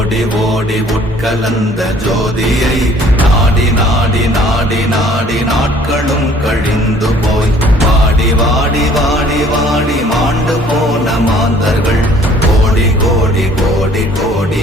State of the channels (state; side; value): normal; both; correlation 0.56